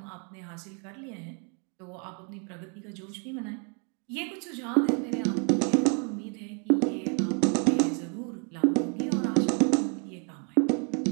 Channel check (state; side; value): quieter; left; 38.3 dB